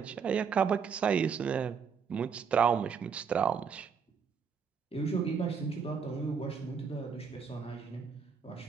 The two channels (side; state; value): left; quieter; 6.4 dB